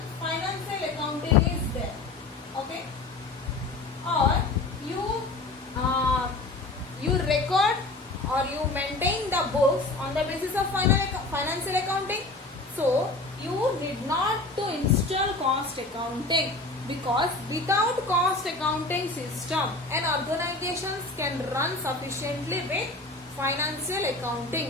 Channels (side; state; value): right; quieter; 3.2 dB